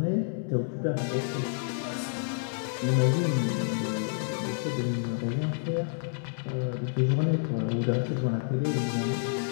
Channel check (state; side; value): silent; right; 59 dB below the other